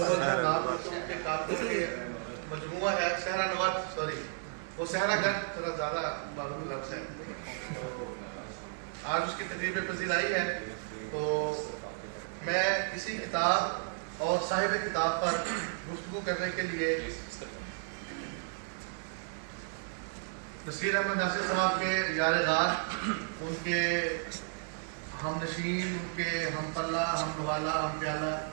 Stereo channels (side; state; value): left; silent; digital silence